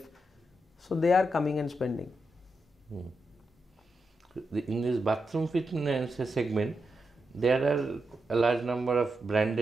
So they are coming and spending. In this bathroom fitness segment, there are a large number of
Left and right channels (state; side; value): normal; both; correlation 0.86